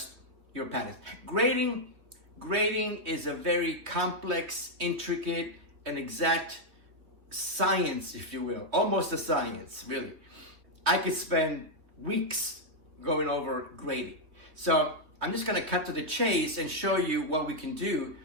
your patterns. Grading is a very complex, intricate, and exact science, if you will. Almost a science, really. I could spend weeks going over grading. So I'm just gonna cut to the chase and show you what we can do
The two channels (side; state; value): left; late; 3.1 ms